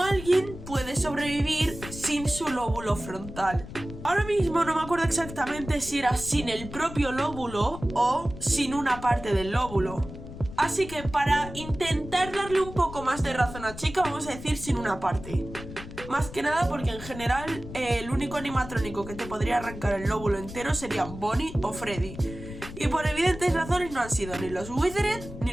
alguien puede sobrevivir sin su lóbulo frontal. Ahora mismo no me acuerdo exactamente si era sin el propio lóbulo o sin una parte del lóbulo. Así que para intentar darle un poco más de razón a Chica, vamos a decir sin una parte. Más que nada porque en general el único animatrónico que te podría arrancar el lóbulo entero serían Bonnie o Freddy. Y por evidentes razones no han sido ni los Withered ni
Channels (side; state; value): left; noise; rumble, 12 dB below the sound